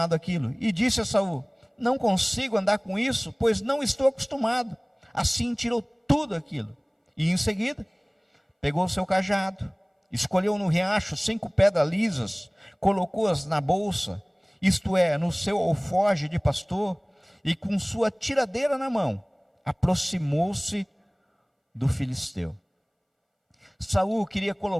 àquilo. E disse a Saul: não consigo andar com isso, pois não estou acostumado. Assim tirou tudo aquilo. E em seguida, pegou seu cajado, escolheu no riacho 5 pedras lisas, colocou-as na bolsa, isto é, no seu alforje de pastor, e com sua tiradeira na mão, aproximou-se do filisteu. Saul queria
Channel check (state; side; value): identical; both; correlation 1.00